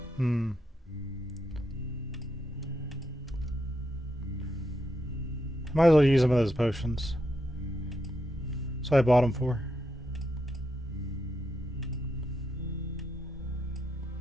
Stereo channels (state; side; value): normal; both; correlation 0.82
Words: Might as well use some of those potions. So I bought them for.